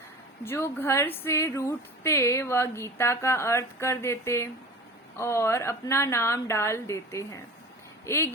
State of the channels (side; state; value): both; normal; correlation 0.36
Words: जो घर से रूठते वह गीता का अर्थ कर देते और अपना नाम डाल देते हैं। एक